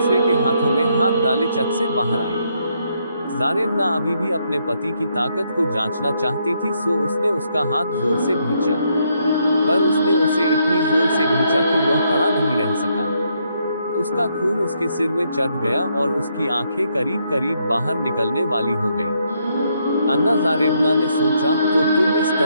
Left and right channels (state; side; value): inverted; both; correlation -0.75